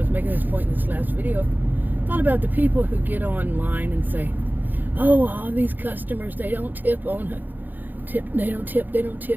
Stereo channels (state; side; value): late; left; 0.087 ms